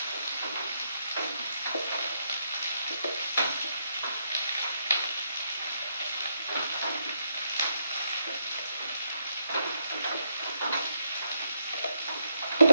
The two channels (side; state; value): both; inverted; correlation -0.78